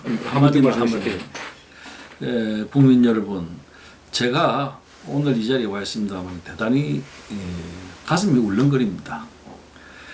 한마디만 하면 국민 여러분, 제가 오늘 이 자리에 와 있습니다만 대단히 가슴이 울렁거립니다.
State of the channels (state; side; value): identical; both; correlation 1.00